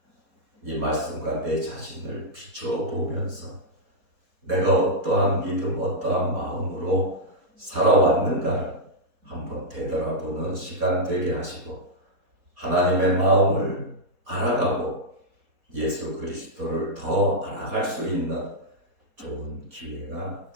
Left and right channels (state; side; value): late; left; 4.2 ms